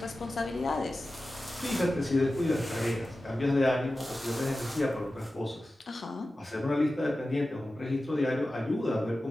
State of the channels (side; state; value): both; normal; correlation 0.94